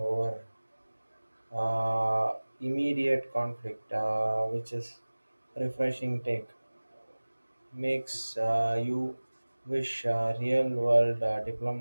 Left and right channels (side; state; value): both; inverted; correlation -1.00